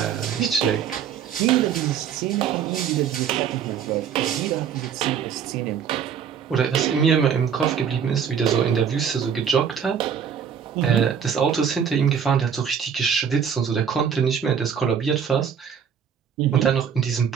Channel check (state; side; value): quieter; left; 7.6 dB